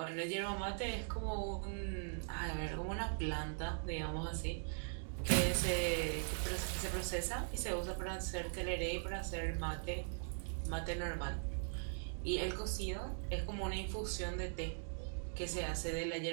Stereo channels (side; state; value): left; silent; digital silence